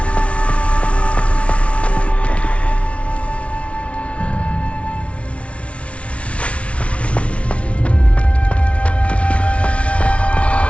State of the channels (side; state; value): right; late; 0.062 ms